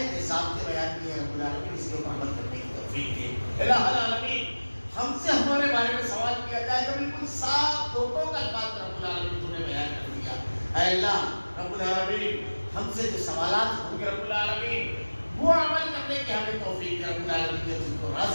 کے ضابطے بیان کیے ہیں رب العالمین اس کے اوپر عمل کرنے کی توفیق دے. الہ العالمین ہم سے ہمارے بارے میں سوال کیا جائے تو بالکل صاف دھوکوں کا الفاظ رب العالمین تو نے بیان کر دیا. اے اللہ رب العالمین ہم سے جو سوالات ہوں گے رب العالمین وہ عمل کرنے کی ہمیں توفیق دے. رب العالمین جو تم کو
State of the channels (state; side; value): inverted; both; correlation -1.00